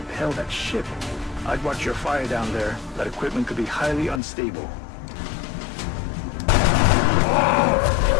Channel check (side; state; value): right; drops out; at 4.2 s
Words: that ship. I'd watch your fire down there. That equipment could be highly unstable.